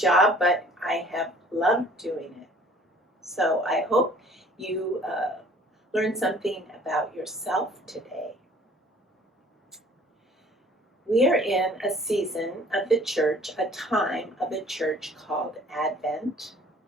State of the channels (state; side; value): normal; both; correlation 0.53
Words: but I have loved doing it. So I hope you learn something about yourself today. We are in a season of the church, a time of the church called Advent.